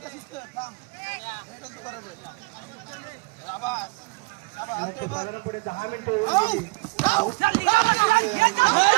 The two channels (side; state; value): left; quieter; 27.7 dB